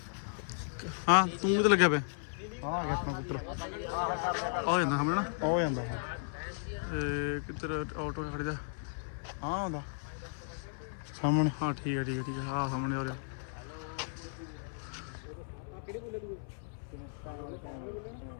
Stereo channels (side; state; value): right; silent; 54 dB below the other